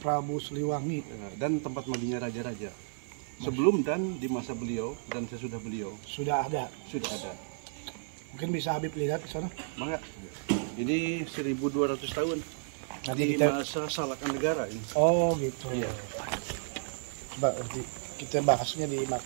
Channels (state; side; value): silent; left; digital silence